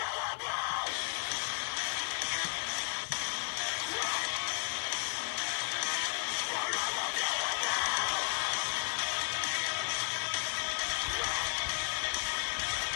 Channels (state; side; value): silent; right; 55 dB below the other